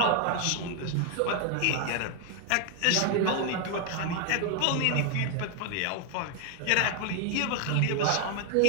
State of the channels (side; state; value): both; different; correlation 0.00